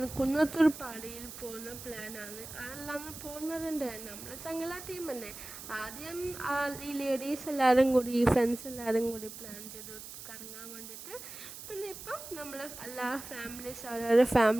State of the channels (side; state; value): right; noise; hiss, 12 dB below the sound